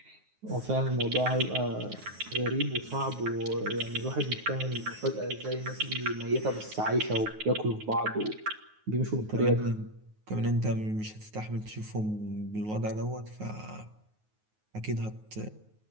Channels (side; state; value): left; late; 9.4 ms